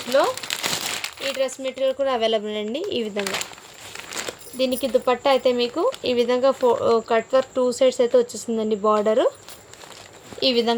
ఈ డ్రెస్ మెటీరియల్ కూడా అవైలబుల్ అండి. ఈ విధంగా దీనికి దుపట్టా అయితే మీకు ఈ విధంగా కట్ వర్క్ 2 సైడ్స్ అయితే వచ్చేసిందండి. బార్డరు ఈ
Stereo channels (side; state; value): both; identical; correlation 1.00